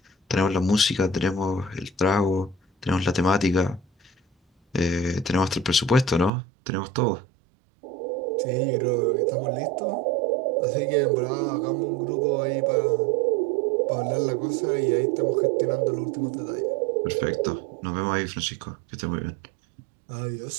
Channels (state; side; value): drops out; left; at 6.3 s